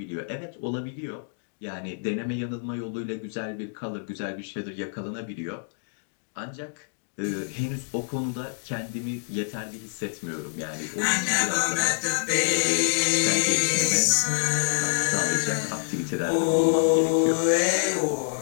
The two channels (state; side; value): silent; right; digital silence